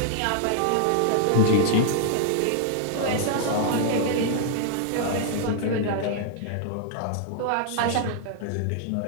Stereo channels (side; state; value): both; different; correlation -0.01